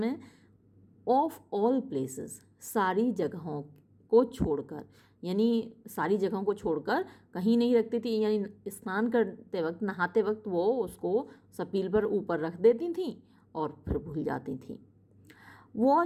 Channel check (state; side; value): identical; both; correlation 1.00